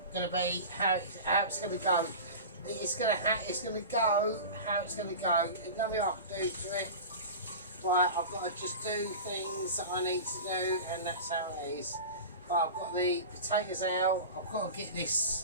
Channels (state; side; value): inverted; both; correlation -0.31